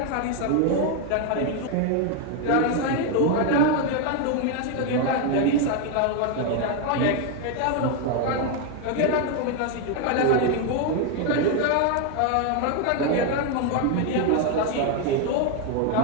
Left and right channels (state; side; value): different; both; correlation 0.01